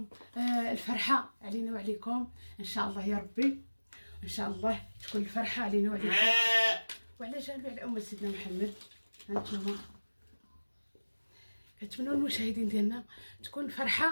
الفرحه علينا وعليكم ان شاء الله يا ربي. ان شاء الله تكون الفرحه علينا وعليكم وعلى جميع الامه سيدنا محمد. هانتوما كنتمنوا المشاهدين ديالنا تكون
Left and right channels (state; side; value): inverted; both; correlation -1.00